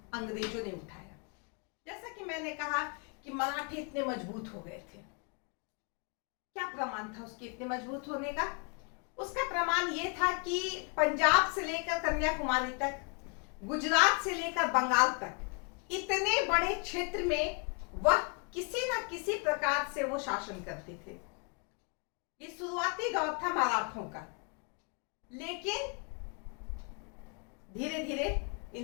अंग्रेजों ने उठाया। जैसा कि मैंने कहा कि मराठे इतने मजबूत हो गए थे। क्या प्रमाण था उसके इतने मजबूत होने का? उसका प्रमाण यह था कि पंजाब से लेकर कन्याकुमारी तक, गुजरात से लेकर बंगाल तक इतने बड़े क्षेत्र में वह किसी न किसी प्रकार से वो शासन करते थे। ये शुरुआती दौर था मराठों का, लेकिन धीरे धीरे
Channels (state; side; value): quieter; right; 36.9 dB